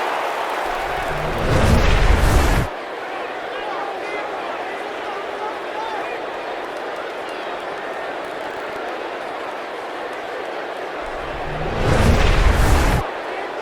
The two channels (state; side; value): identical; both; correlation 1.00